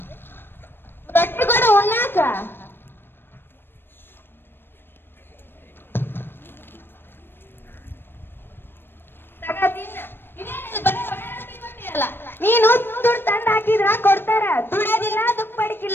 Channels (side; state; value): right; late; 0.10 ms